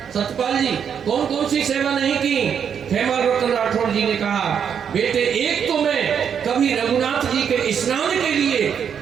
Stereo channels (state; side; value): quieter; left; 7.7 dB